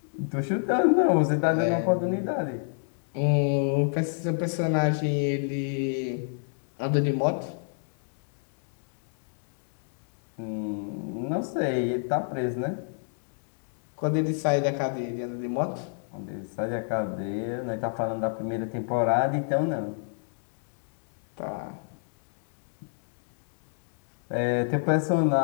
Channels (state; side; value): silent; right; digital silence